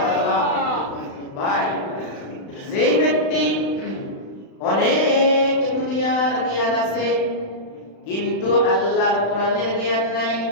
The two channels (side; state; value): right; late; 36 ms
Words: ভাই, যেই ব্যক্তি অনেক দুনিয়ার জ্ঞান আছে কিন্তু আল্লাহর কোরআনের জ্ঞান নাই,